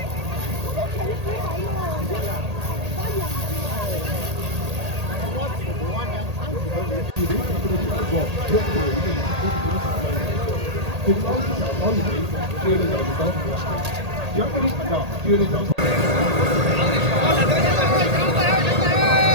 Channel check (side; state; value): left; late; 1.8 ms